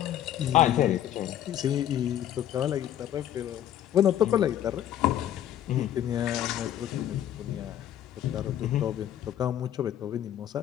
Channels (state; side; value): quieter; right; 11.2 dB